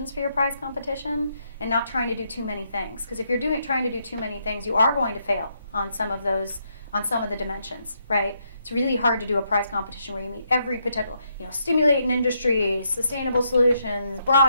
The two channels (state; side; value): inverted; both; correlation -0.77